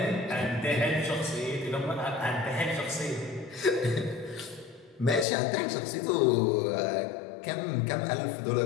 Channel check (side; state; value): right; drops out; at 5.2 s